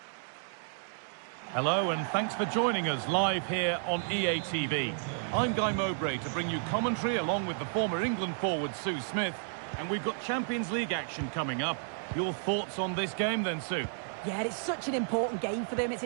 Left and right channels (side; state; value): left; silent; digital silence